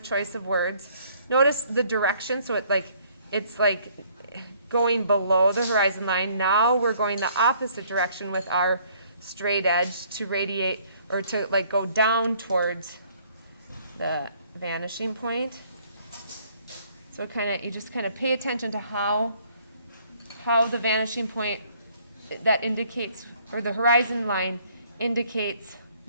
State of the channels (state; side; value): inverted; both; correlation -0.61